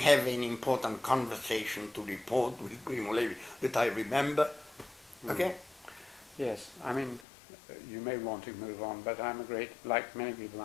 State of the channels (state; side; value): drops out; right; at 7.2 s